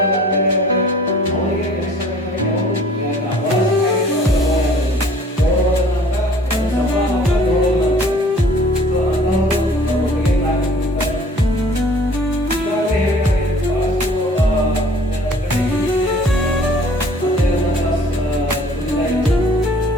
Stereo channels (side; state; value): both; normal; correlation 0.52